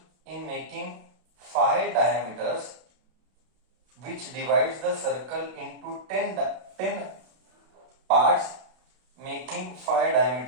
in making 5 diameters, which divides the circle into 10 parts, making 5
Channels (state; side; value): late; left; 32 ms